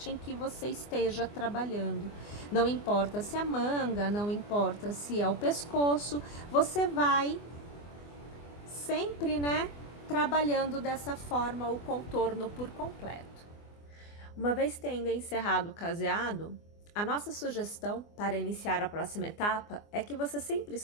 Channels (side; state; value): right; late; 24 ms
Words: em que você esteja trabalhando. Não importa se é manga, não importa se é o pescoço, você vai sempre, né, trabalhando dessa forma o contorno por completo. Uma vez tendo encerrado o caseado, a nossa sugestão para iniciar a próxima etapa é que você sempre